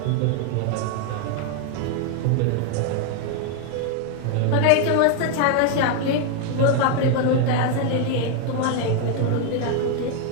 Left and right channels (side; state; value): both; different; correlation 0.01